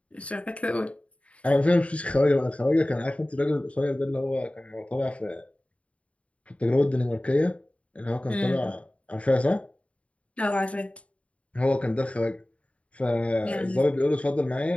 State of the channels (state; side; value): late; right; 0.064 ms